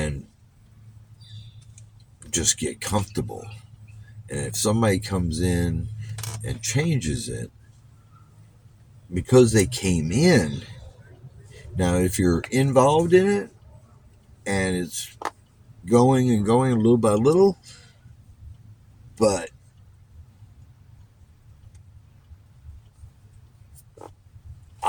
just get comfortable. And if somebody comes in and changes it because they came in, now if you're involved in it and it's going and going little by little, but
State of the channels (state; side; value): identical; both; correlation 1.00